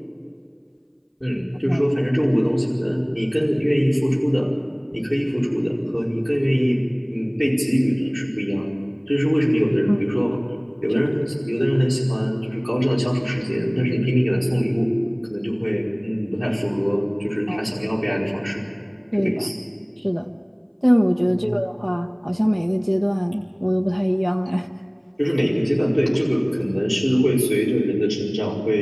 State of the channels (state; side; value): identical; both; correlation 1.00